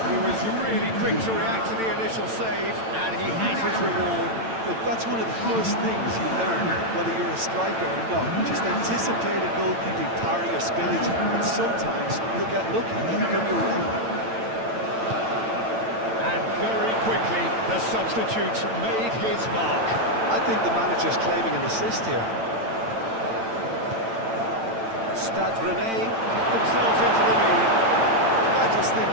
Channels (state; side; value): late; left; 8.9 ms